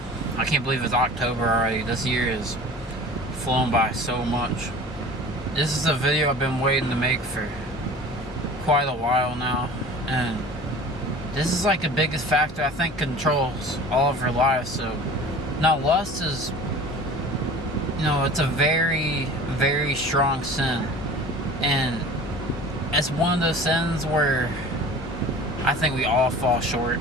I can't believe it's October already. This year is flown by so much. This is a video I've been waiting to make for quite a while now, and this is like the biggest factor I think controls all of our lives. So now lust is, it's a very, very strong sin, and it's one of those sins where I think we all fall short.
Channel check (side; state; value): both; normal; correlation 0.41